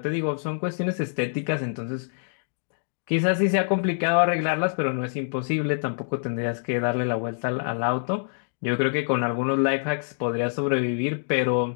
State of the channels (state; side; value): silent; right; digital silence